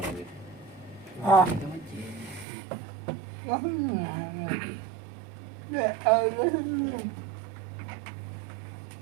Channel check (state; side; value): drops out; left; at 2.5 s